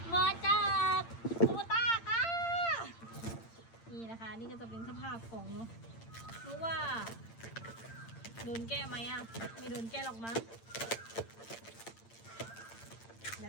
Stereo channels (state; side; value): late; right; 8.8 ms